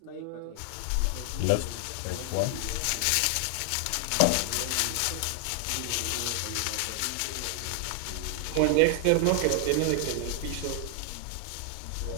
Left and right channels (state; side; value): different; both; correlation 0.00